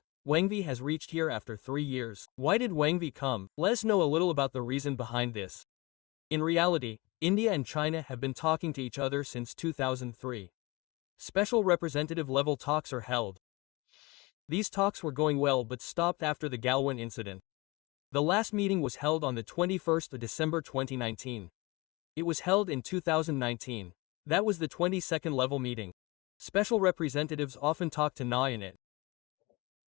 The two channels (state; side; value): quieter; right; 24.1 dB